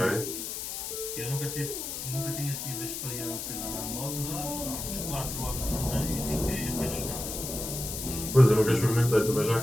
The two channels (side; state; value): left; noise; hiss, 5 dB below the sound